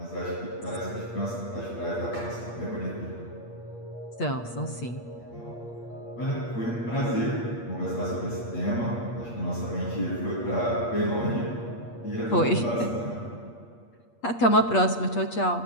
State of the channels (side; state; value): right; late; 8.5 ms